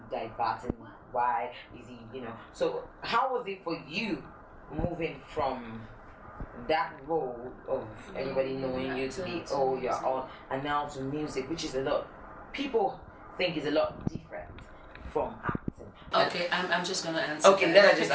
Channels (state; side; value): identical; both; correlation 1.00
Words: diverting? Why is he, you know? So how was it for you moving from that role of everybody knowing you to be, oh, you're on, and now to music, which is a lot, people think is a lot different from acting. Okay, I'm just going to answer. Okay, then I just